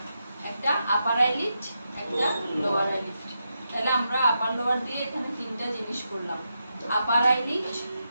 একটা আপার আইলিড, একটা লোয়ার আইলিড। তাহলে আমরা আপার লোয়ার দিয়ে এখানে তিনটা জিনিস করলাম, আপার আইলিড,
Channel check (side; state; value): both; inverted; correlation -0.85